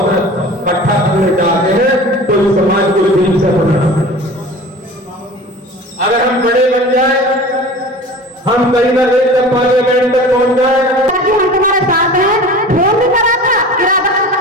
से इकट्ठा करने जाते हैं तो इस समाज को दिल से बनाना। अगर हम बड़े बन जाए, हम कहीं ना कहीं तक पार्लियामेंट तक पहुंच जाए। हम तुम्हारे साथ हैं, फोन भी करा था,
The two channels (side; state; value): both; normal; correlation 0.39